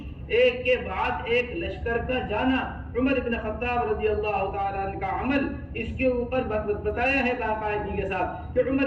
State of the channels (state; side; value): identical; both; correlation 1.00